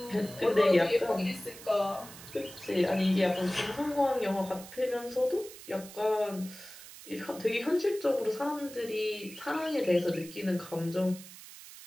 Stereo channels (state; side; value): noise; right; hiss, 16 dB below the sound